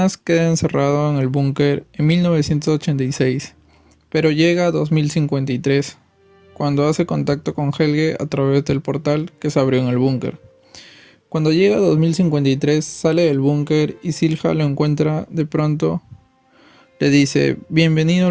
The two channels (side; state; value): both; identical; correlation 1.00